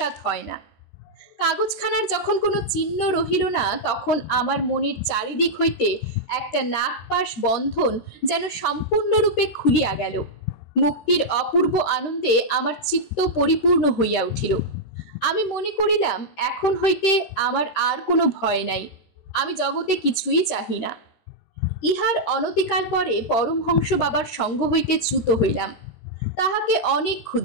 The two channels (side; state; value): right; late; 13 ms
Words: হয় না। কাগজখানার যখন কোনো চিহ্ন রহিল না, তখন আমার মনের চারিদিক হইতে একটা নাগপাশ বন্ধন যেন সম্পূর্ণরূপে খুলিয়া গেল। মুক্তির অপূর্ব আনন্দে আমার চিত্ত পরিপূর্ণ হইয়া উঠিল। আমি মনে করিলাম, এখন হইতে আমার আর কোনো ভয় নাই, আমি জগতে কিছুই চাহি না। ইহার অনতিকাল পরে পরমহংস বাবার সঙ্গ হইতে চ্যুত হইলাম। তাহাকে অনেক